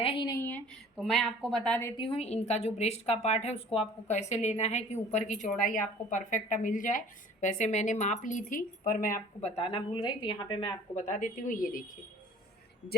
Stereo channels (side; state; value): both; normal; correlation 0.48